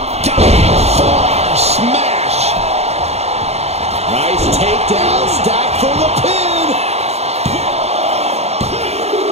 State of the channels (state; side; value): late; left; 0.31 ms